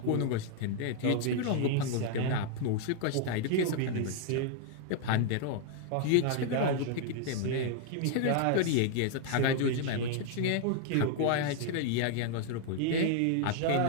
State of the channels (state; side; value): different; both; correlation 0.00